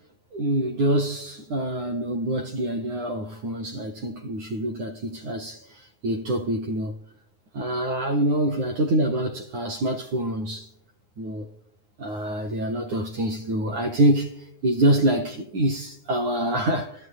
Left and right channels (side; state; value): left; late; 9.7 ms